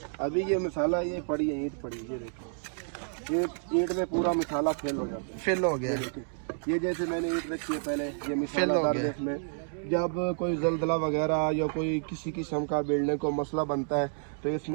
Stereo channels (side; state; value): left; silent; digital silence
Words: अभी ये मिसाला ये पड़ी है, ईंट पड़ी है, ये देखिए ये ईंट में पूरा मिसाला फेल हो जाता है। फिल हो गया। ये जैसे मैंने ईंट रखी है पहले, ये फिल मिसाला हो डाल गया। दे इसमें। जब कोई जलजला वगैरह या कोई किसी किस्म का बिल्डिंग को मसला बनता है तो